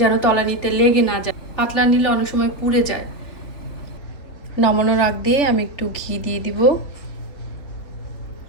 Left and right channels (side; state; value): right; late; 3.4 ms